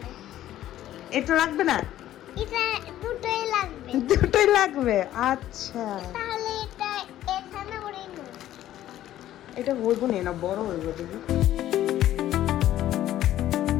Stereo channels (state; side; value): quieter; right; 12.9 dB